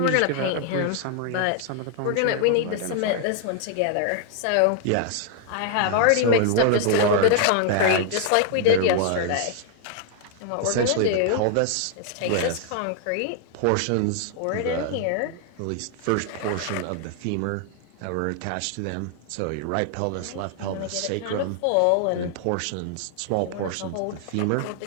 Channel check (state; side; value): different; both; correlation 0.00